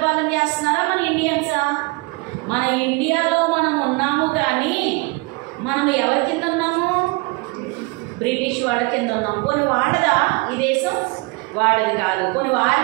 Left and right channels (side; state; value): left; quieter; 27.1 dB